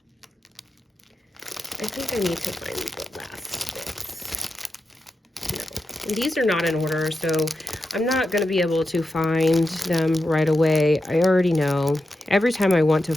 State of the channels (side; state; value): both; normal; correlation 0.89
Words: I think I need to find the last bits. No, and these are not in order, so I'm not going to be able to find them right away. I already know. Every time I want to